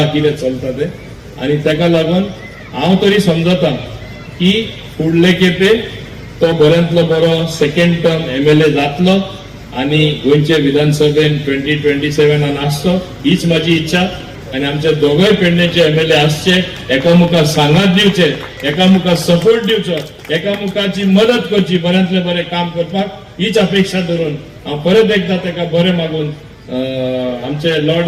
कितें चलता तें. आनी ताका लागून हांव तरी समजता की फुडले खेपे तो बऱ्यांतलो बरो सेकंड टर्म MLA जातलो आनी गोंयचे विधानसभेन 2027 आसचो, हीच म्हाजी इच्छा. आनी आमचे दोगय पेडणेचे MLA आसचे, एकामुखार सांगात दिवचे, एकामुखार सपोर्ट दिवचो, एकामुखाची मदत करची, बऱ्यांतले बरें काम करपाक, हीच अपेक्षा धरून हांव परत एकदा ताका बरें मागून आमचे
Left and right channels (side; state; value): both; identical; correlation 1.00